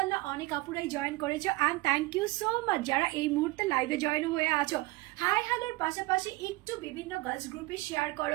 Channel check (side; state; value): left; quieter; 21.1 dB